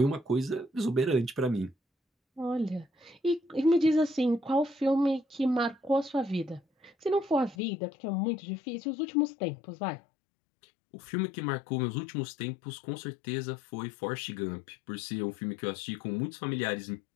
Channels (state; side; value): drops out; right; at 7.6 s